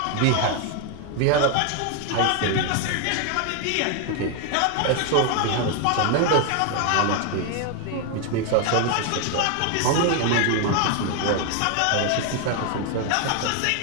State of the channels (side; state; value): both; different; correlation 0.01